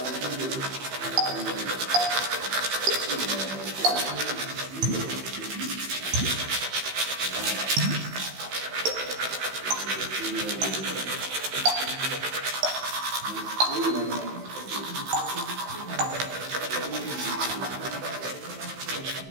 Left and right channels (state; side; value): late; left; 15 ms